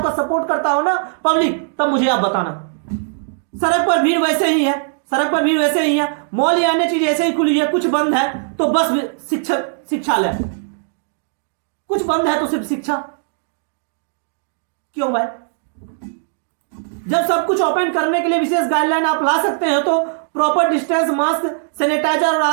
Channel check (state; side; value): silent; left; digital silence